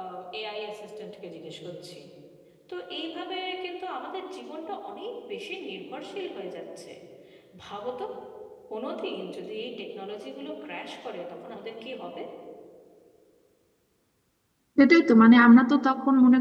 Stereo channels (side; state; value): both; identical; correlation 1.00